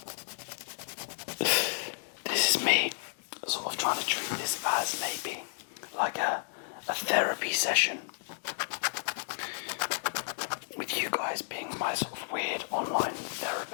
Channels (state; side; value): silent; right; digital silence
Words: This is me sort of trying to treat this as maybe like a therapy session with you guys. guys being my sort of weird online